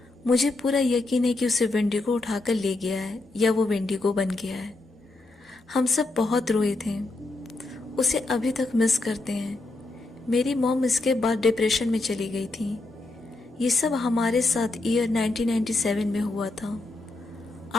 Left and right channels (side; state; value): right; quieter; 3.1 dB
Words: मुझे पूरा यकीन है कि उसे वेंडिगो उठाकर ले गया है या वो वेंडिगो बन गया है। हम सब बहुत रोए थे। उसे अभी तक मिस करते हैं। मेरी मॉम इसके बाद डिप्रेशन में चली गई थी। ये सब हमारे साथ ईयर 1997 में हुआ था।